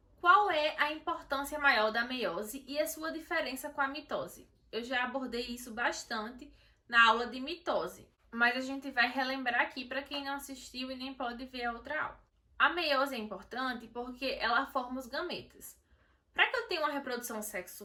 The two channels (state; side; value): identical; both; correlation 1.00